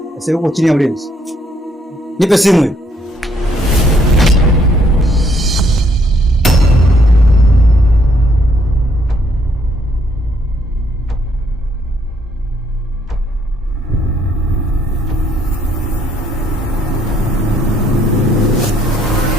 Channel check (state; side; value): normal; both; correlation 0.68